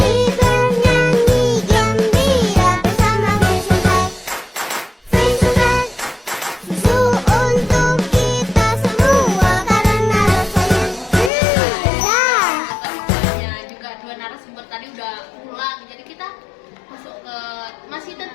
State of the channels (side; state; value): right; drops out; at 11.3 s